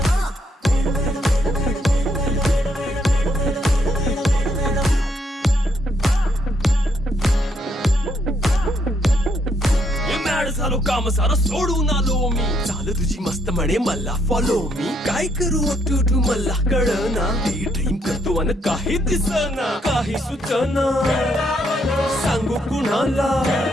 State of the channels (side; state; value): both; normal; correlation 0.73